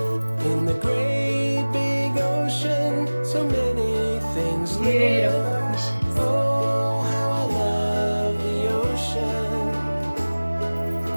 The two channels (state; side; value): inverted; both; correlation -1.00